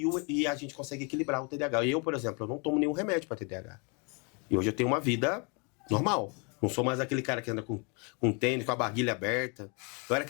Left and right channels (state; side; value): quieter; right; 33.5 dB